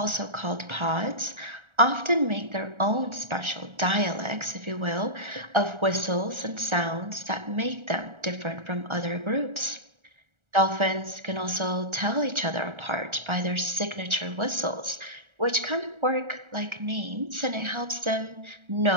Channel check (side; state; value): left; late; 1.4 ms